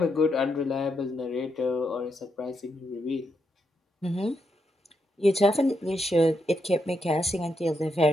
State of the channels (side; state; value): both; normal; correlation 0.81